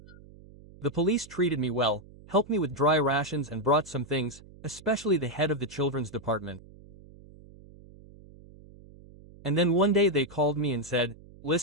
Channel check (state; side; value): noise; right; hum, 21 dB below the sound